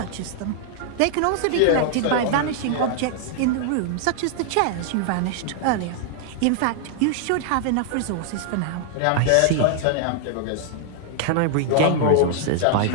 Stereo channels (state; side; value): different; both; correlation -0.01